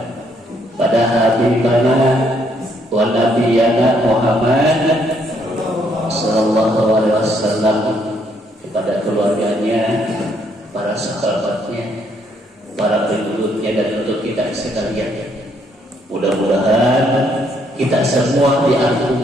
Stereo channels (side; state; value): both; normal; correlation 0.70